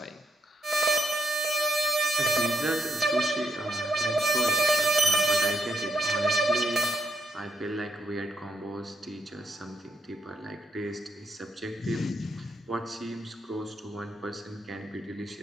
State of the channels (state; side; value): normal; both; correlation 0.80